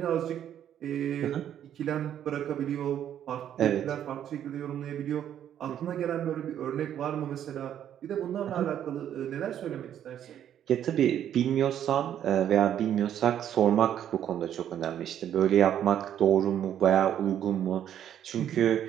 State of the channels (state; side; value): quieter; left; 10.2 dB